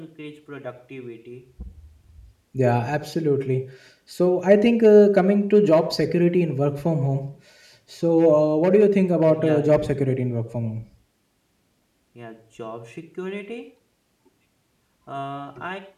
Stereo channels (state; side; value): identical; both; correlation 1.00